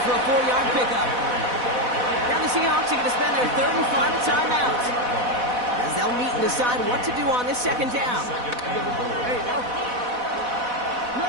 for a 4-yard pickup. Now the Seahawks are going to spend their third and final timeout, as they'll meet and decide what to do on this second down.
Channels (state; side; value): late; left; 4.1 ms